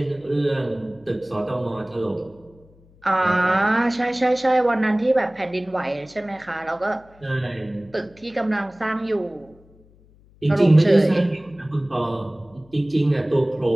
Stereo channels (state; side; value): noise; left; hum, 28 dB below the sound